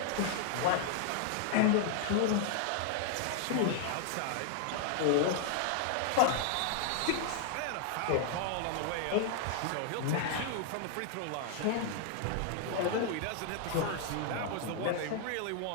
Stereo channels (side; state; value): both; different; correlation 0.00